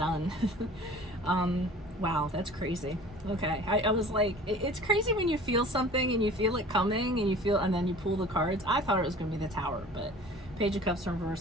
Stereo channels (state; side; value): normal; both; correlation 0.45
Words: Wow, that's crazy. Okay, I was like, it's crazy when you feel something and you feel it coming and then you pull the cards. I thought it was going to be the Tower, but Page of Cups in